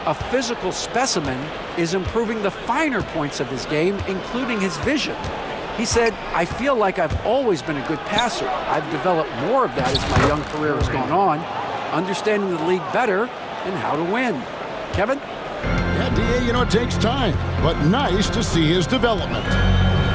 a physical specimen, is improving the finer points of his game, including his vision. He said, "I feel like I've always been a good passer. I've developed more of that as my young career has gone on, understanding the league better and how to win." Kevin? Yeah, D.A., it takes time, but nice to see his development.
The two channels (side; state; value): both; identical; correlation 1.00